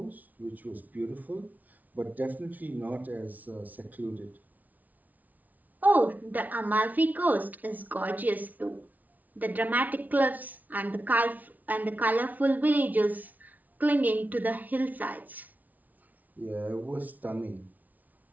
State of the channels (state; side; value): late; left; 0.077 ms